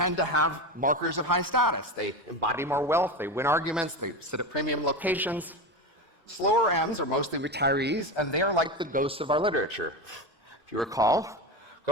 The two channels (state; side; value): normal; both; correlation 0.20